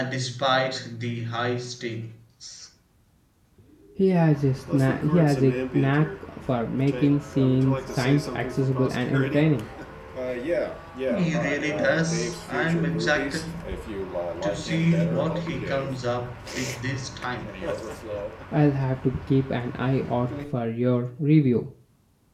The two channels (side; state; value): both; identical; correlation 1.00